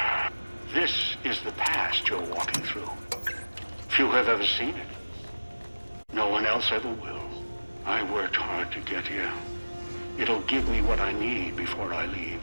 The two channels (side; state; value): both; inverted; correlation -1.00